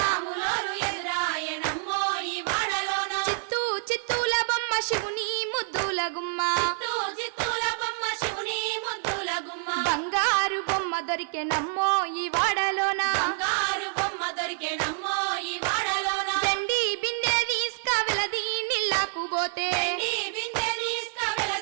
రాములోరు ఎదురాయనమ్మో ఈ వాడలోన చిత్తూ చిత్తూల బొమ్మ శివుని ముద్దుల గుమ్మ చిత్తూ చిత్తూల బొమ్మ శివుని ముద్దుల గుమ్మ బంగారు బొమ్మ దొరికెనమ్మో ఈ వాడలోన బంగారు బొమ్మ దొరికేనమ్మో ఈ వాడలోన దండి బిందె తీసుకవెలది నీళ్ళకు పోతే నీ బిందె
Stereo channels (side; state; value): left; silent; 60 dB below the other